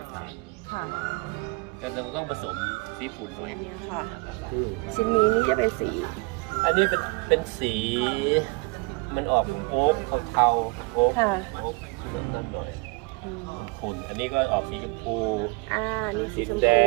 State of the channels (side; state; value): left; quieter; 27.7 dB